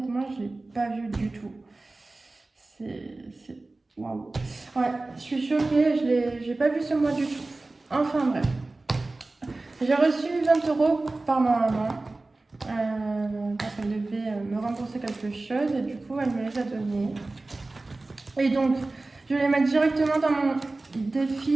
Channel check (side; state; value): left; quieter; 3.2 dB